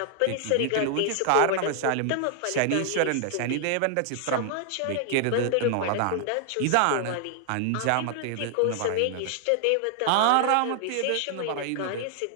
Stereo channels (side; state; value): both; different; correlation 0.00